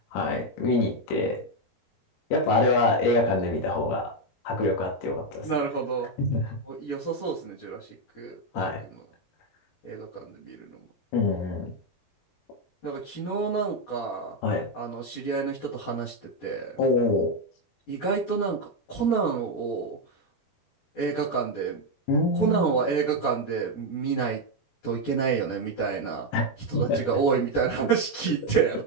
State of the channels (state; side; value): late; right; 15 ms